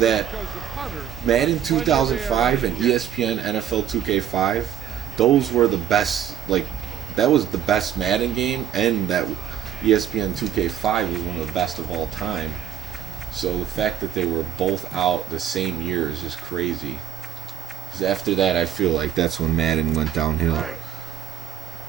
Madden 2005 and ESPN NFL 2K5, those were the best. Like, that was the best Madden game, and that ESPN 2K5 was one of the best of all time. So the fact that they were both out the same year is just crazy. Because after that, I feel like that's when Madden went downhill.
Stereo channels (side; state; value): left; quieter; 9.8 dB